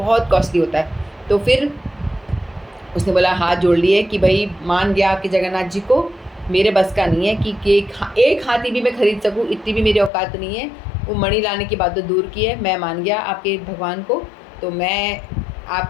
कॉस्टली होता है। तो फिर उसने बोला, हाथ जोड़ लिए कि भाई मान गया आपके जगन्नाथ जी को, मेरे बस का नहीं है कि एक हाथी भी मैं खरीद सकूं, इतनी भी मेरी औकात नहीं है। वो मणि लाने की बात तो दूर की है, मैं मान गया आपके भगवान को, तो मैं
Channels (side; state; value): right; drops out; at 10.1 s